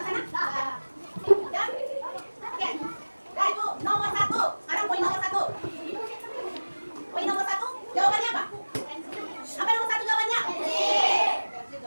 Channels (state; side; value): inverted; both; correlation -1.00